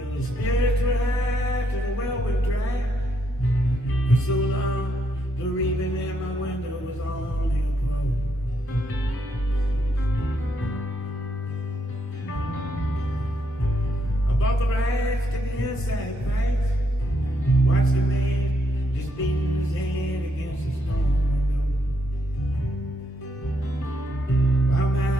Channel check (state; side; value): normal; both; correlation 0.76